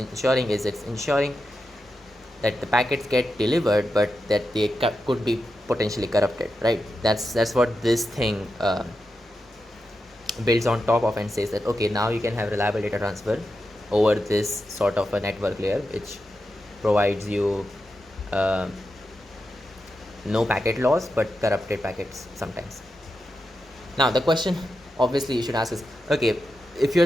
is it's ensuring that the packets get delivered, but that they could be potentially corrupted, right? That's what this thing builds on top of, and says that, okay, now you can have reliable data transfer over this sort of a network layer, which provides you uh, no packet loss but corrupted packets sometimes. Now the question obviously you should ask is, okay, if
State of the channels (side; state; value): both; normal; correlation 0.89